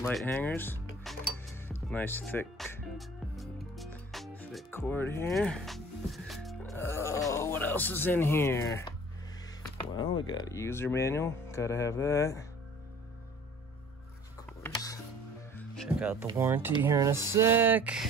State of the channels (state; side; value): normal; both; correlation 0.49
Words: light hangers. Nice thick cord here. Oh, what else is in here? Well, we got a user manual. Gotta have that. Of course. Check out the warranty here in a sec.